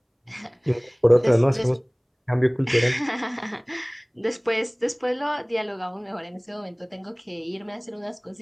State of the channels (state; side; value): identical; both; correlation 1.00